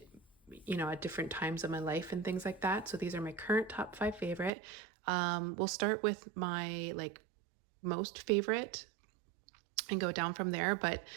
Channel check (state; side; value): drops out; left; at 4.5 s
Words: at different times of my life and things like that. So these are my current top 5 favorite. We'll start with my most favorite and go down from there. But